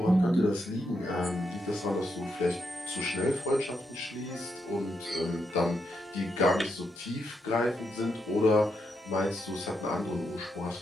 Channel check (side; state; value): both; normal; correlation 0.81